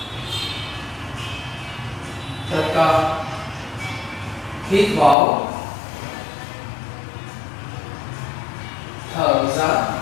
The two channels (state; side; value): drops out; right; at 5.2 s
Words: Tất cả hít vào, thở ra.